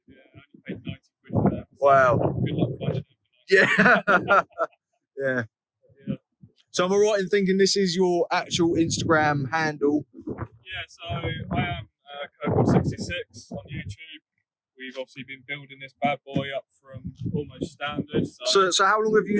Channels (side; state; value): both; identical; correlation 1.00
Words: Yeah, I only paid 90 quid for that. Wow. Good luck finding it. Yeah. Yeah. So am I right in thinking this is your actual Instagram handle? Yeah, so I am Kirkham66 on YouTube. We've obviously been building this bad boy up from almost standard. So how long have